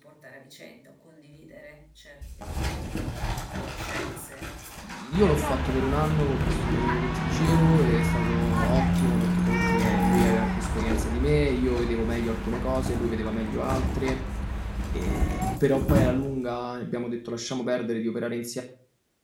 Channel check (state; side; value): identical; both; correlation 1.00